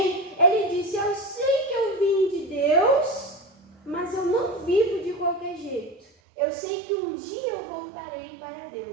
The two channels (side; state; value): left; drops out; at 6.1 s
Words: Ele disse, eu sei que eu vim de Deus, mas eu não vivo de qualquer jeito. Eu sei que um dia eu voltarei para